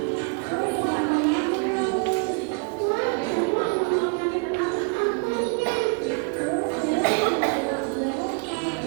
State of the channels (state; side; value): quieter; left; 36.4 dB